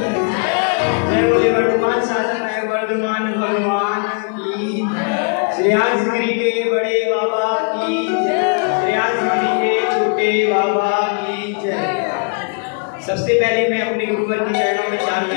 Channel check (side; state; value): right; quieter; 38.6 dB